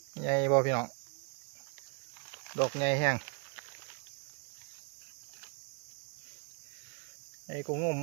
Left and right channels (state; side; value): quieter; left; 35.9 dB